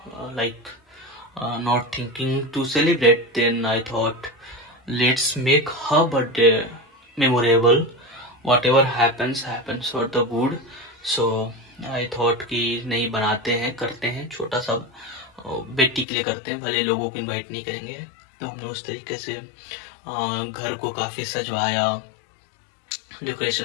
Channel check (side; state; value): right; drops out; at 16.1 s